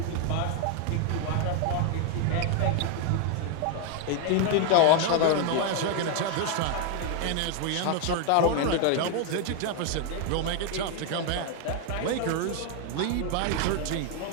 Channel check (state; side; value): different; both; correlation 0.01